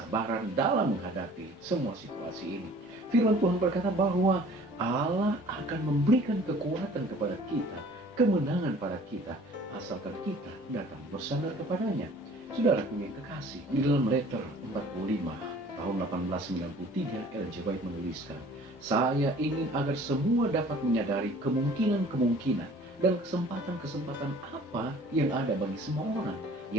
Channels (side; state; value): both; normal; correlation 0.50